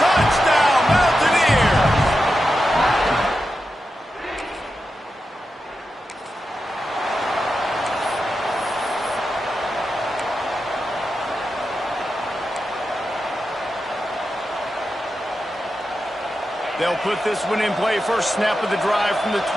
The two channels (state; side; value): normal; both; correlation 0.90